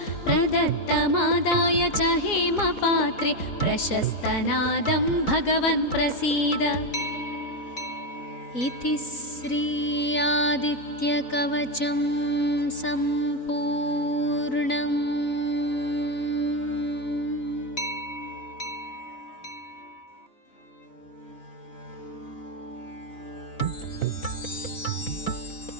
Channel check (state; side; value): late; right; 3.9 ms